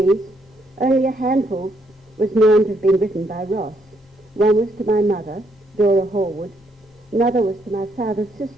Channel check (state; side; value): normal; both; correlation 0.73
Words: only a handful was known to have been written by Ross. One was to my mother, Dora Horwood. Another was to my father's